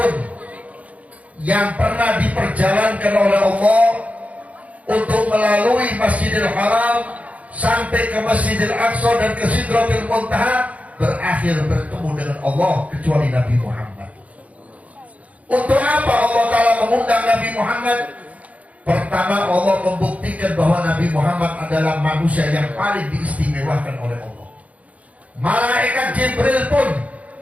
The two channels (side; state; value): left; late; 0.068 ms